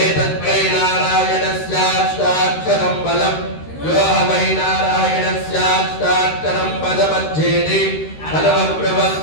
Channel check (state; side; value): late; right; 13 ms